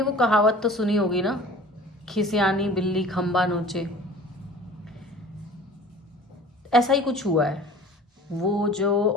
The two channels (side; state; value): both; normal; correlation 0.44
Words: वो कहावत तो सुनी होगी ना, खिसियानी बिल्ली खंबा नोचे। ऐसा ही कुछ हुआ है। वो जो